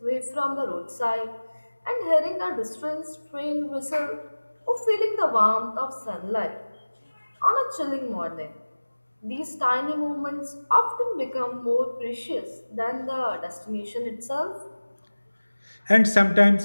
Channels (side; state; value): both; inverted; correlation -1.00